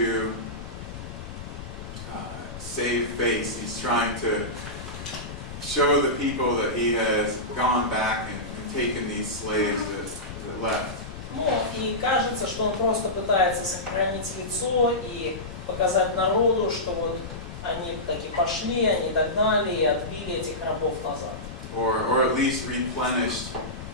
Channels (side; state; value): left; noise; rumble, 11 dB below the sound